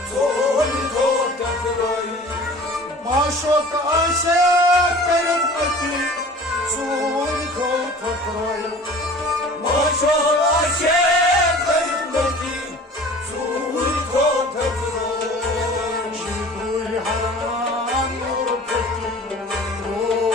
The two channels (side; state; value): both; normal; correlation 0.44